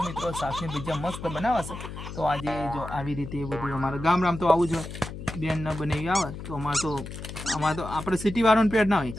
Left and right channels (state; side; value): noise; left; hum, 10 dB below the sound